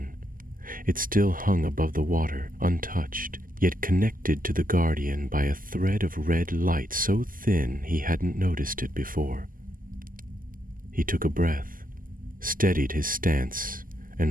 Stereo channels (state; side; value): late; left; 0.41 ms